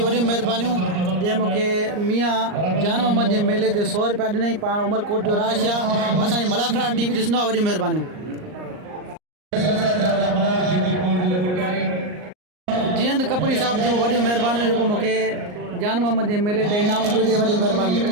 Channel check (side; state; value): left; late; 38 ms